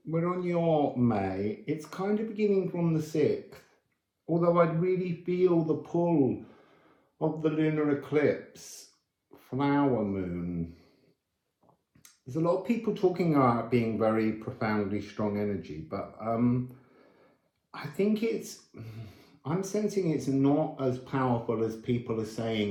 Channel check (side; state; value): both; identical; correlation 1.00